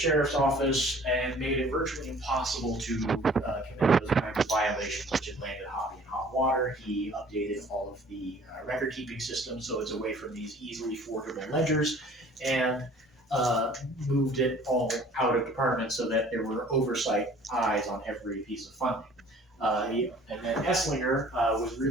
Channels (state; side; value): normal; both; correlation 0.51